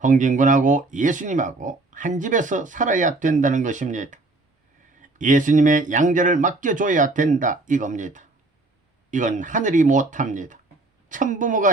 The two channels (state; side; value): quieter; left; 3.1 dB